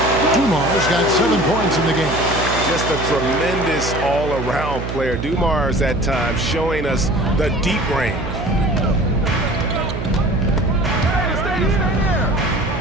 Dumars got 7 points in the game. Just a tremendous all-around player. Dumars at times showing us the deep range.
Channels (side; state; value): right; noise; hum, 5 dB below the sound